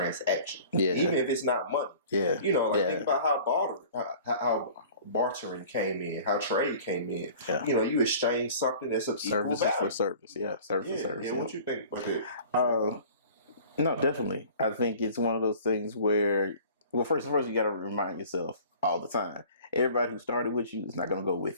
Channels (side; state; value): both; inverted; correlation -0.46